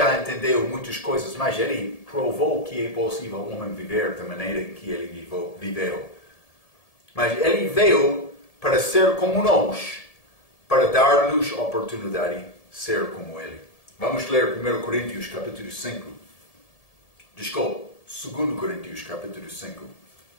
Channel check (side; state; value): right; late; 1.7 ms